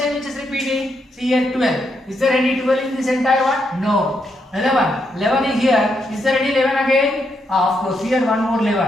which is repeating? See here 12. Is there any 12 in this entire one? No. 11. 11 is here. Is there any 11 again? Of course, here one more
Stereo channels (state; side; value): normal; both; correlation 0.79